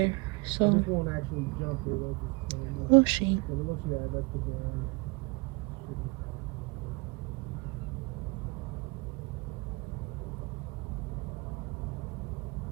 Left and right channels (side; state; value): left; quieter; 27.6 dB